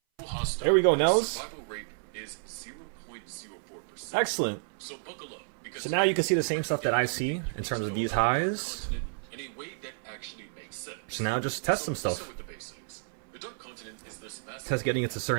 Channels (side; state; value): left; silent; 57 dB below the other